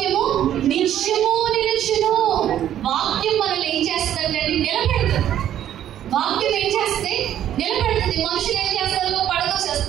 నిత్యము నిలుచును. వాక్యం మనల్ని ఏం చేస్తుందంటే నిలబెడుతుంది. వాక్యం ఏం చేస్తే నిలబెడుతుంది. మనుషులు ఏం చేస్తారు?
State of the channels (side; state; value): left; quieter; 11.1 dB